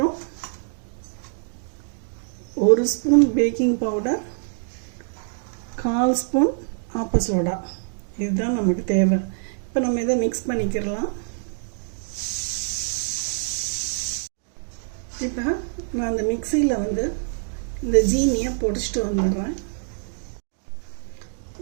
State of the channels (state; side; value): silent; left; digital silence